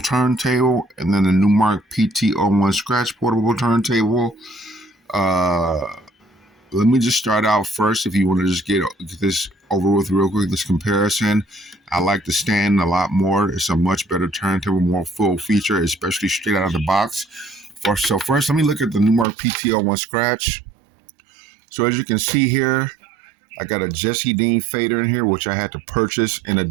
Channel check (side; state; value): left; drops out; at 19.2 s